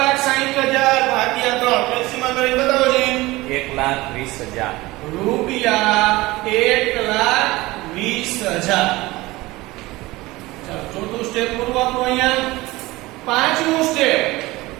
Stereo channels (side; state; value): left; quieter; 19.9 dB